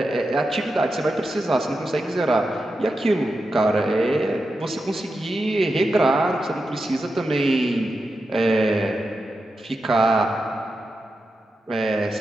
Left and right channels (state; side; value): normal; both; correlation 0.89